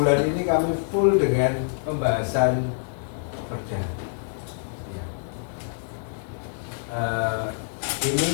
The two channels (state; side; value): silent; right; digital silence